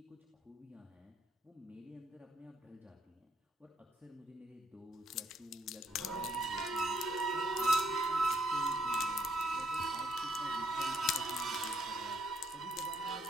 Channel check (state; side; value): normal; both; correlation 0.70